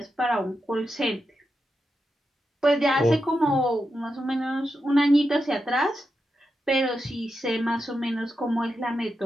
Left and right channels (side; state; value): both; normal; correlation 0.88